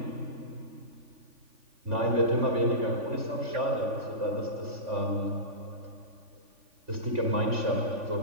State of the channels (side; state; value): left; late; 3.5 ms